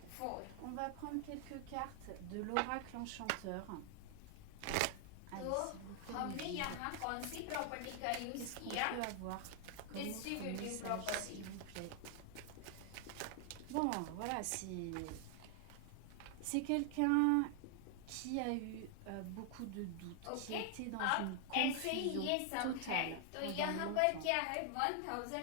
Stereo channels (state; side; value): different; both; correlation 0.00